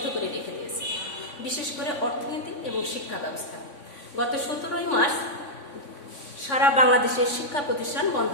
করে রেখে দিয়েছে, বিশেষ করে অর্থনীতি এবং শিক্ষা ব্যবস্থা। গত 17 মার্চ সারা বাংলাদেশের শিক্ষা প্রতিষ্ঠান বন্ধ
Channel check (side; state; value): right; late; 3.6 ms